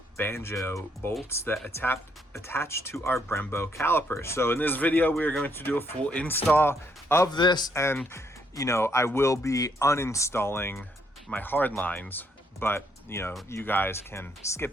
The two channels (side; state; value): both; normal; correlation 0.72